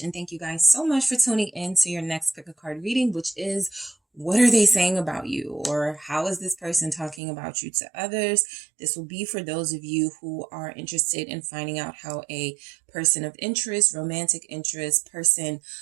and thank you guys so much for tuning in to your next pick a card reading, which is what are they saying about you, or how is this person talking about you to others? This will be for those of you who are interested in finding out how a person of interest, romantic interest, person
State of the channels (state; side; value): drops out; left; at 7.2 s